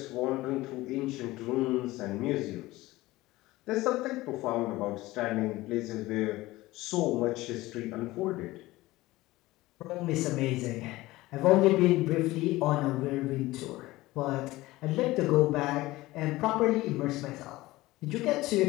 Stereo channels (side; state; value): right; quieter; 18.6 dB